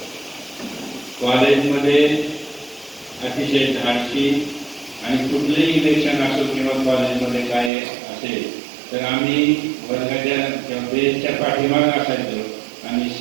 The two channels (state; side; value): drops out; left; at 7.7 s